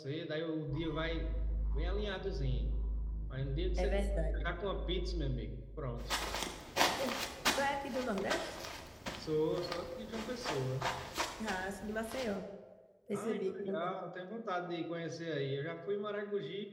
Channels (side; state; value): both; identical; correlation 1.00